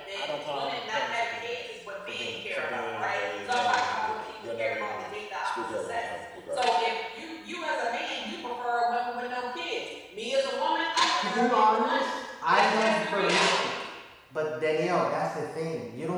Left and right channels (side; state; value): both; identical; correlation 1.00